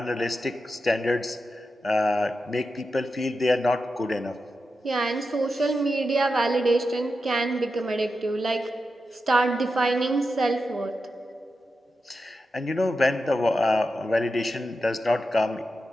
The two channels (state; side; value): normal; both; correlation 0.89